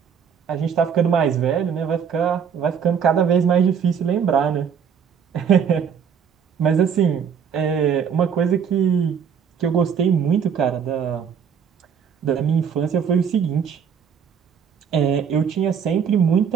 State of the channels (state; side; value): quieter; left; 7.3 dB